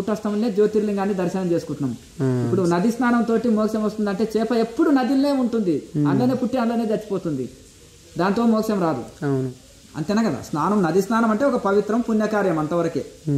జ్యోతిర్లింగాన్ని దర్శనం చేసుకుంటున్నాం. ఇప్పుడు నది స్నానం తోటి మోక్షం వస్తుంది అంటే, చేప ఎప్పుడు నదిలోనే ఉంటుంది, అందులోనే పుట్టి అందులోనే చచ్చిపోతుంది, దాంతో మోక్షం రాదు. అంతేనా కదా? స్నానం, నది స్నానం అంటే ఒక పవిత్రం పుణ్యకార్యం అంతవరకే.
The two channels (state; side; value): identical; both; correlation 1.00